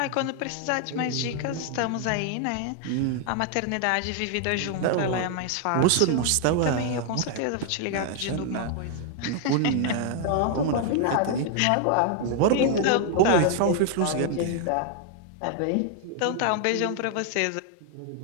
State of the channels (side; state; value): both; different; correlation 0.00